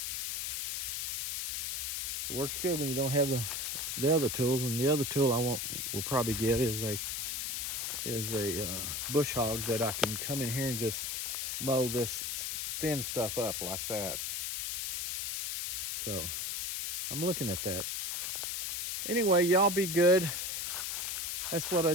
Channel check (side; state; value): left; noise; hiss, 2 dB below the sound